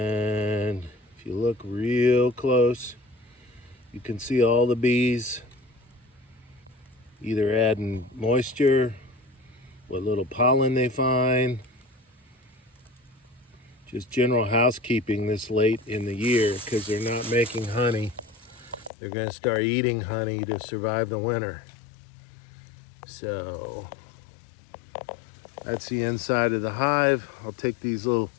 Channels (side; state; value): right; drops out; at 18.9 s